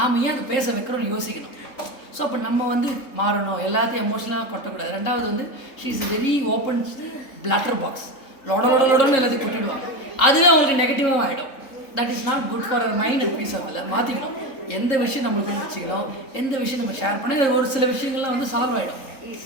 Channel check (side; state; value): right; late; 3.7 ms